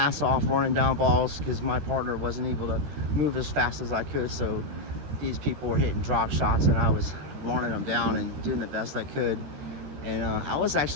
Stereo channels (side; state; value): left; late; 13 ms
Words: off running down balls because my partner wasn't able to move as fast as I could. So these people were hitting drop shots and I was running them down and doing the best I could. And I was